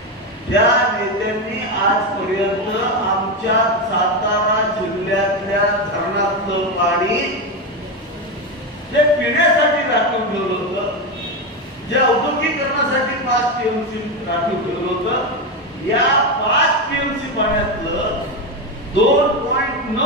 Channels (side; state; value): both; normal; correlation 0.13